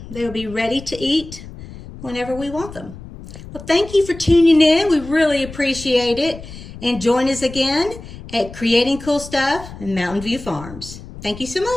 they will be ready to eat whenever we want them. Well, thank you for tuning in. We really appreciate it. And join us again at Creating Cool Stuff in Mountain View Farms. Thank you so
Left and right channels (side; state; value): left; noise; rumble, 15 dB below the sound